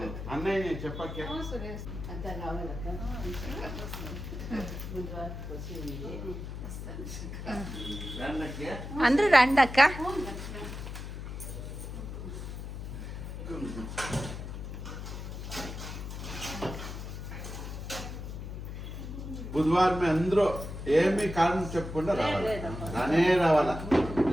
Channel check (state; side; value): noise; left; hum, 8 dB below the sound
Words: అన్నయ్య చెప్పకే అంతా రావాలక్క బుధవారం వచ్చి ఉంది ಅಂದ್ರೆ ರಂಡಕ್ಕ బుధవారం అందరూ ఏమి కారణం చెప్పకుండా రావాలి, రానే రావాలా.